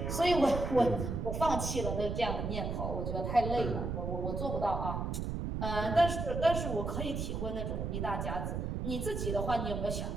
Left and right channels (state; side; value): noise; right; rumble, 3 dB below the sound